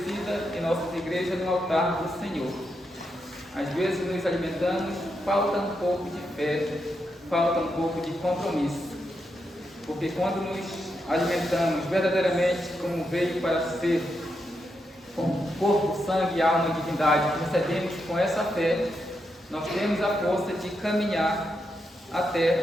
em nossas igrejas no altar do Senhor. Às vezes nos alimentamos, falta um pouco de fé, falta um pouco de compromisso. Porque quando nos alimentamos verdadeiramente como veio para ser, com corpo, sangue, alma e divindade, que recebemos com essa fé, nós temos a força de caminhar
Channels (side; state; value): both; normal; correlation 0.83